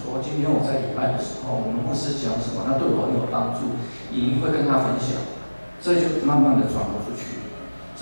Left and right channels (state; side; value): inverted; both; correlation -1.00